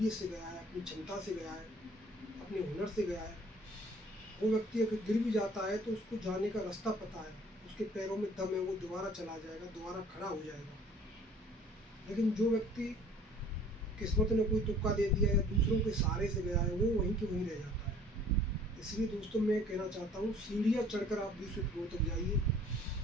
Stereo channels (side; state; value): both; normal; correlation 0.53